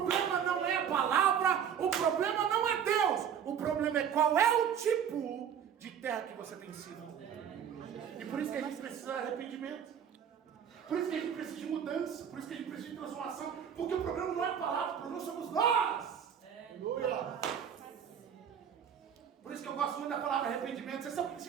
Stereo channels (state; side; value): quieter; left; 8.3 dB